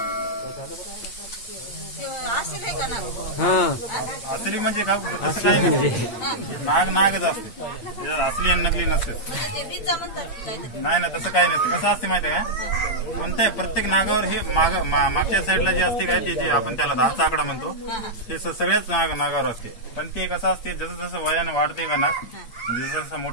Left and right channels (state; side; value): late; right; 8.7 ms